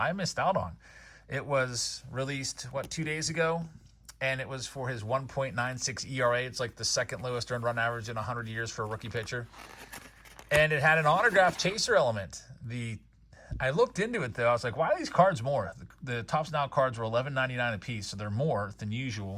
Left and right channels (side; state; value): both; identical; correlation 1.00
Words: missed out on. It was released, 2 days ago? And it was for his 1.96 ERA. It's like the second lowest earned run average in 100 years for a rookie pitcher. And it had an autograph chaser element. I looked into it, though. I was like, why are these cards more? The Topps Now cards were $11.99 a piece, so they're more than